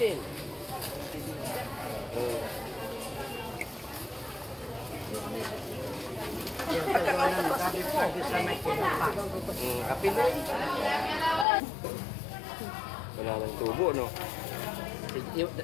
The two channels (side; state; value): right; drops out; at 11.5 s